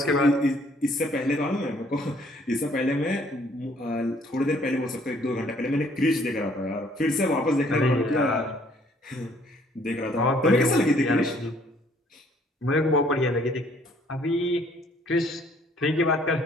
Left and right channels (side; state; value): both; normal; correlation 0.62